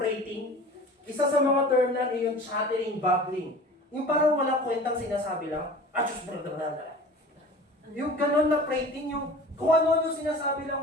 Isa sa mga term na yung chattering, babbling. Yung parang walang kwentang sinasabi lang, yung ganon na prating, yung kung ano yung sinasabi lang,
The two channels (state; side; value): normal; both; correlation 0.40